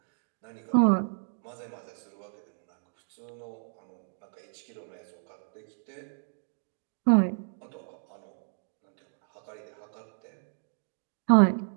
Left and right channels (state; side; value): silent; left; digital silence